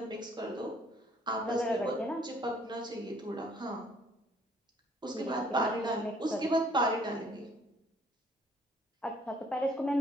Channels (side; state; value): both; normal; correlation 0.61